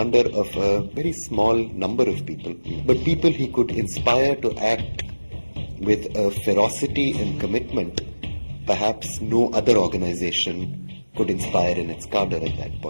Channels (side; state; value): both; inverted; correlation -1.00